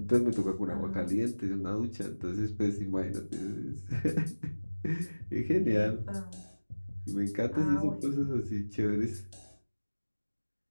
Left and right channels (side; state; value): both; inverted; correlation -1.00